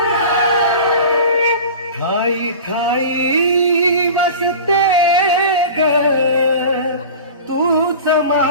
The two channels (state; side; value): inverted; both; correlation -0.36